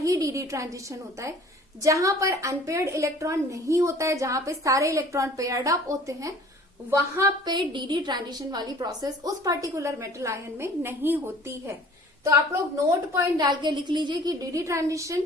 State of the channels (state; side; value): normal; both; correlation 0.49